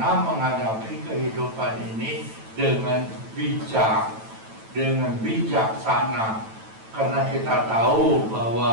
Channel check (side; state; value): left; late; 9.1 ms